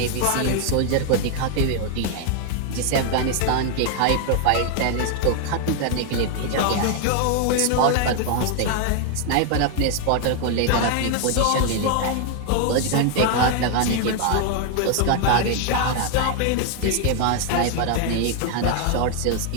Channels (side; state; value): both; different; correlation 0.00